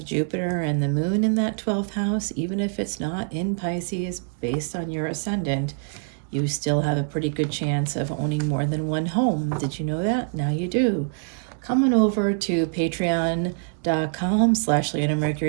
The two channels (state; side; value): silent; left; digital silence